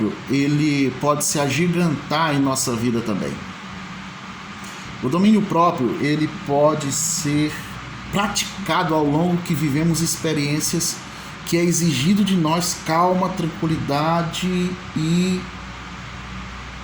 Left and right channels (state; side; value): identical; both; correlation 1.00